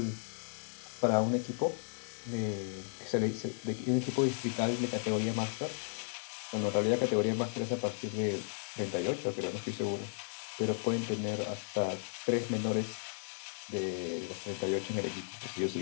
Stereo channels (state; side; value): silent; right; digital silence